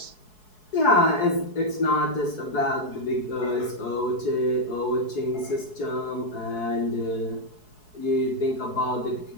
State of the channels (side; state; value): right; late; 4.7 ms